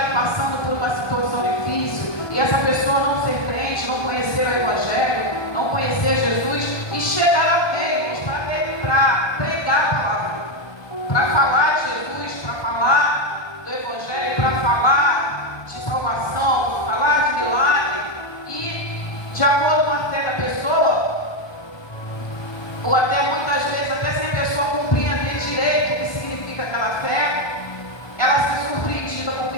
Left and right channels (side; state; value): right; late; 1.2 ms